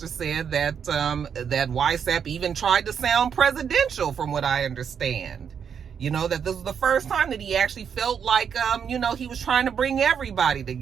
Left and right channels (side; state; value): left; quieter; 7.4 dB